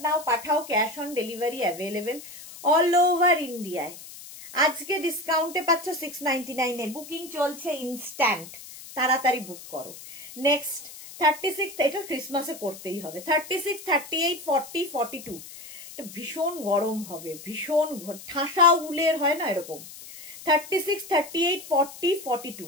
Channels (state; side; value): noise; left; hiss, 15 dB below the sound